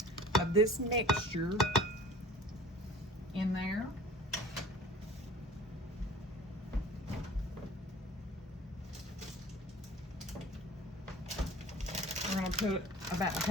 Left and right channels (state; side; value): normal; both; correlation 0.45